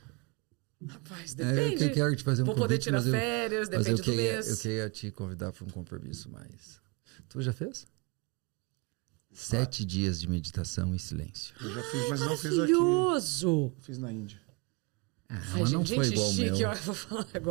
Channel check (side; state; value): left; quieter; 28.8 dB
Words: Rapaz, depende. Eu quero te fazer um Vou convite, poder tirar férias, depende do mês. Eu queria te convidar para um compromisso, mas... Tu já fez? 7 dias de meditação em silêncio. Eu já fiz, mas não fiz aqui. Maravilhoso! Fiz na Índia. Mas não foi igual ao meu. Eu vou falar um